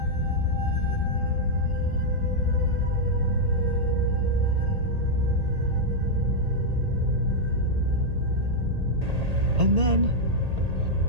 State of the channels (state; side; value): late; left; 1.8 ms